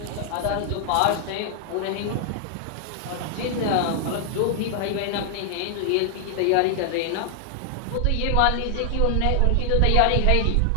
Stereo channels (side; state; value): both; different; correlation 0.00